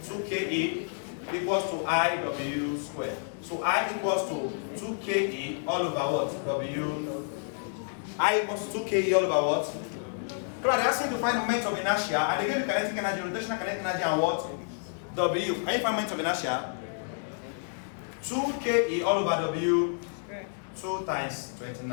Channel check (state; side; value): silent; right; digital silence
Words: 2KE equals to IW square. So I equals to 2KE all over what? W. I equals to 2KE all over what? So they're asking to find moment of inertia, and they give you kinetic energy, rotational kinetic energy, and what? W. Can you find moment of inertia? 2KE all over W. 2 times